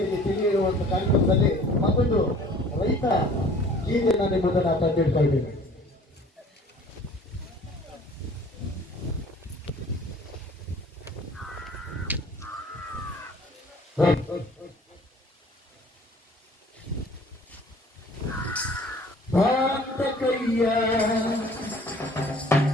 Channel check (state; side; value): normal; both; correlation 0.51